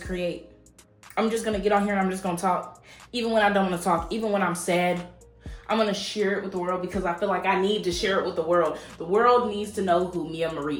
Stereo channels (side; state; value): both; identical; correlation 1.00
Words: create. I'm just going to get on here and I'm just going to talk. Even when I don't want to talk, even when I'm sad, I'm going to share it with the world, because I feel like I need to share it with the world. The world needs to know who Mia Marie